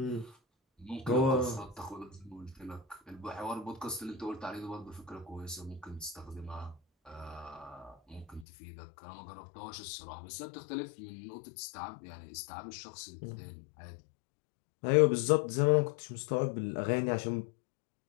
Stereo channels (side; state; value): right; drops out; at 8.5 s